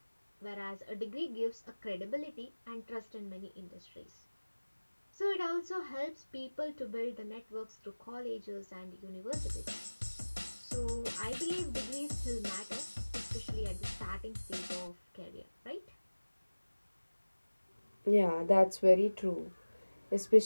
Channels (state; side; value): inverted; both; correlation -1.00